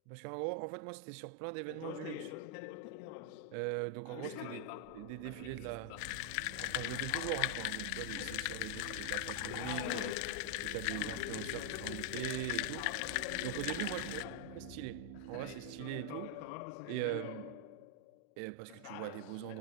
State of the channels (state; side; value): different; both; correlation 0.00